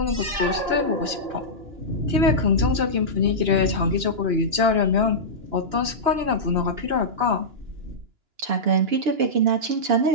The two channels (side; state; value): left; late; 2.9 ms